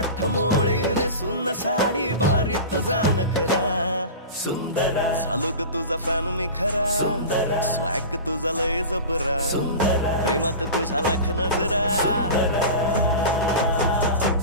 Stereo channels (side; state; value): both; inverted; correlation -0.31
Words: मोळीने सुन्न साडी भारी तुझा नखरा सुंदरा झालो ग तुझा फॅन मी खरा स्वॅग तुझा लय जबरा प्रेमात तुझा लाख नजरा